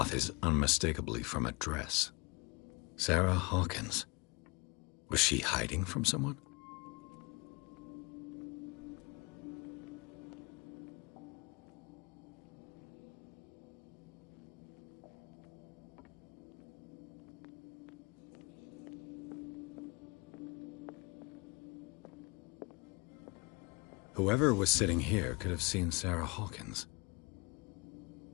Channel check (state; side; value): quieter; right; 28.4 dB